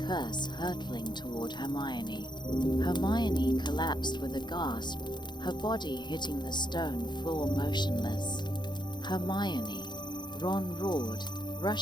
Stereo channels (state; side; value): late; right; 0.21 ms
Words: hurtling toward Hermione. Hermione collapsed with a gasp, her body hitting the stone floor motionless. "Hermione!" Ron roared,